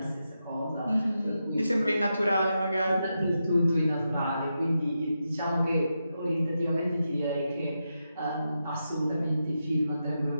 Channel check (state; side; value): inverted; both; correlation -0.87